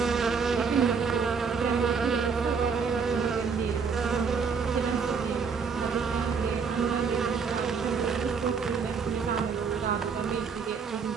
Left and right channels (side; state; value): left; quieter; 5.7 dB